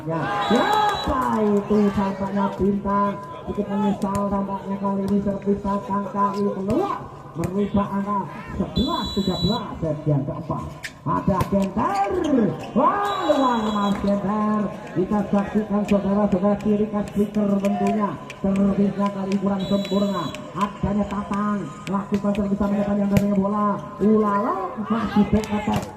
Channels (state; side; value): identical; both; correlation 1.00